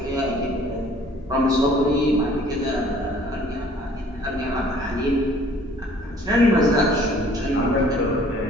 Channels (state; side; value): normal; both; correlation 0.55